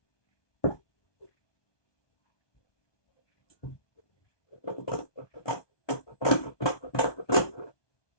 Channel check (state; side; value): late; right; 1.2 ms